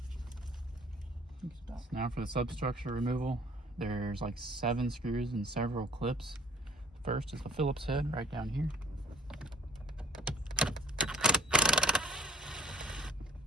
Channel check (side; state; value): both; normal; correlation 0.53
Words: So now for the substructure removal, there's like 7 screws and several clips. First is the Phillips head right down here.